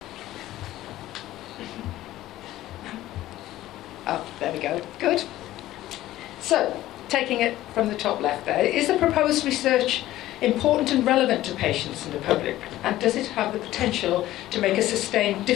Oh, there we go, good. So, taking it from the top left there, is the proposed research important and relevant to patients and the public? And does it have the potential to make a sustained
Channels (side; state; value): right; quieter; 15.0 dB